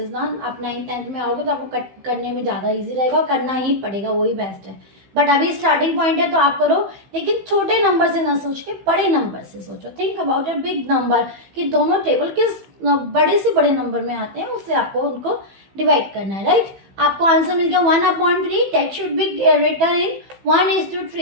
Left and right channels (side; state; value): left; late; 15 ms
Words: ना। आप 9th 10th में आओगे तो आपको कट करने में ज़्यादा ईजी रहेगा और करना ही पड़ेगा, वही बेस्ट है। बट अभी स्टार्टिंग पॉइंट है तो आप करो, लेकिन छोटे नंबर से ना सोच के बड़े नंबर से सोचो। Think about a big number कि दोनों टेबल किस बड़े से बड़े नंबर में आते हैं, उससे आपको उनको डिवाइड करना है, राइट। आपको आंसर मिल गया 1/3 that should be written in